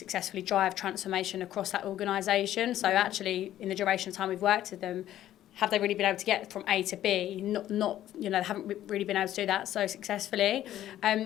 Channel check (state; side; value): quieter; right; 12.6 dB